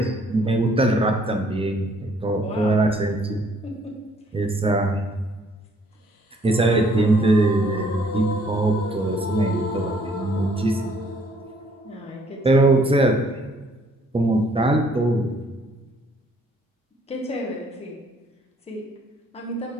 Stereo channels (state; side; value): normal; both; correlation 0.63